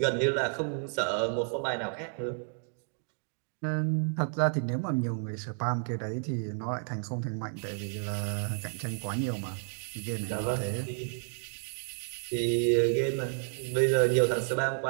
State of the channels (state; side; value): silent; left; 57 dB below the other